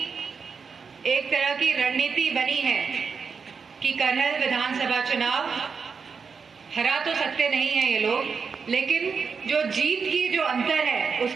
एक तरह की रणनीति बनी है कि करहल विधानसभा चुनाव हरा तो सकते नहीं हैं ये लोग, लेकिन जो जीत की जो अंतर है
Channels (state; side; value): quieter; left; 5.6 dB